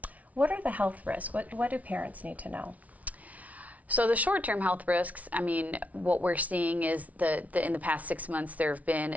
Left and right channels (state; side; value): late; left; 0.070 ms